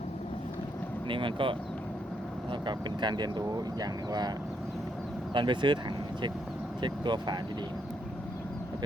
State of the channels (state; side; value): normal; both; correlation 0.77